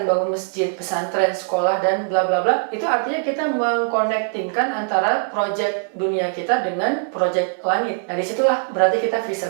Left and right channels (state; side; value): silent; left; 63 dB below the other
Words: bangun masjid, pesantren, sekolah, dan bla bla bla. Itu artinya kita mengkonektingkan antara proyek dunia kita dengan proyek langit. Nah, disitulah berarti kita